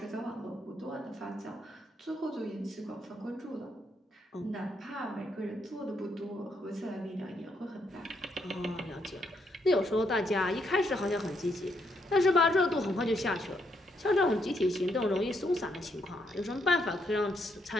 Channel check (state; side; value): normal; both; correlation 0.76